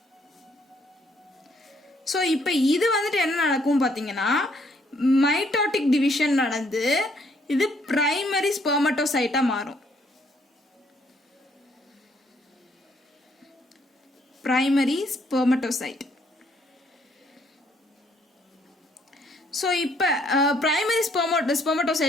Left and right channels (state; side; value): normal; both; correlation 0.68